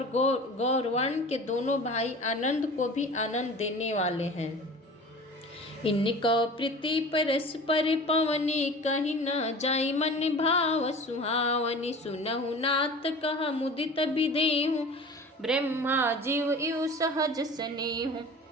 गौरवर्ण के दोनों भाई आनंद को भी आनंद देने वाले हैं। इनको प्रीति परस्पर पवनी, कहीं न जाई मन भाव सुहावनी। सुनहु नाथ कह मुदित विदेहु, ब्रह्मा जीव इव सहज स्नेहु।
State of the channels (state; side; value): normal; both; correlation 0.39